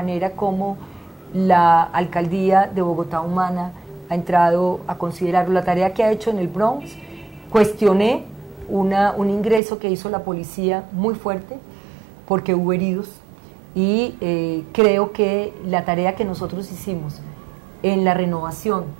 como la Alcaldía de Bogotá Humana ha entrado a considerarlo. La tarea que ha hecho en el Bronx, cuestioné un ingreso que hizo la policía muy fuerte, porque hubo heridos, y creo que la tarea que nosotros hicimos en la renovación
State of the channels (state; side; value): drops out; left; at 9.6 s